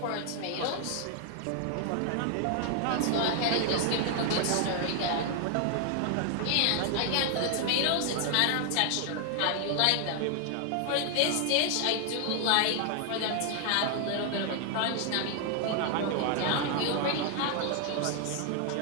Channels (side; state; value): both; different; correlation 0.00